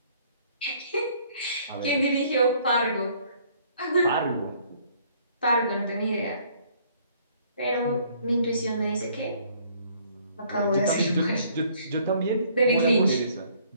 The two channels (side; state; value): both; inverted; correlation -0.61